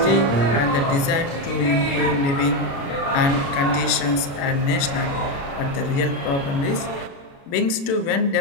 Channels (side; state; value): right; late; 36 ms